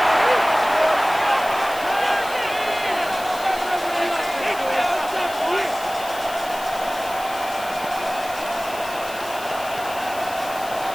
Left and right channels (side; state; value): left; noise; hiss, 15 dB below the sound